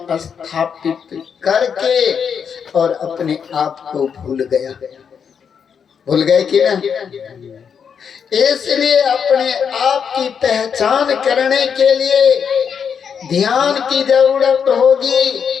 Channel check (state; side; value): quieter; right; 7.0 dB